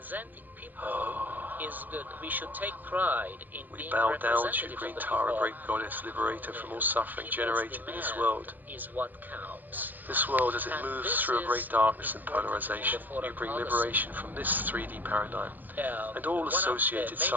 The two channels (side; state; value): left; late; 0.085 ms